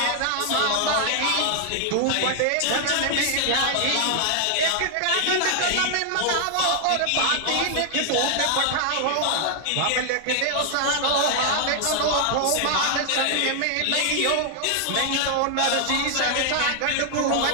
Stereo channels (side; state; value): both; different; correlation 0.00